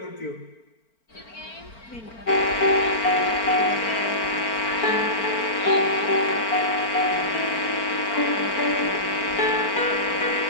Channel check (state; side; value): late; right; 4.4 ms